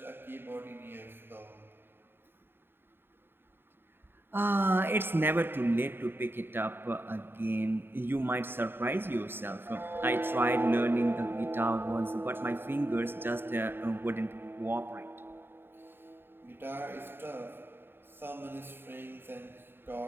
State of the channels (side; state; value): left; late; 0.10 ms